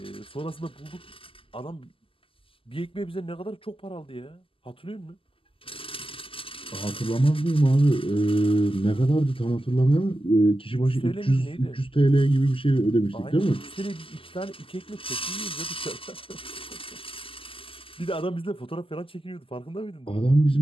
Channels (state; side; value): late; right; 0.26 ms